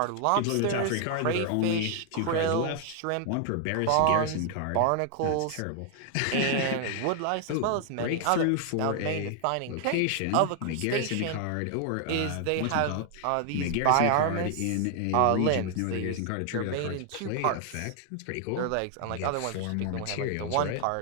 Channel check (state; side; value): different; both; correlation 0.00